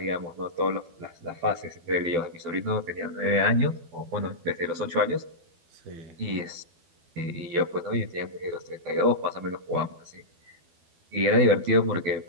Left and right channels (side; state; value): left; late; 12 ms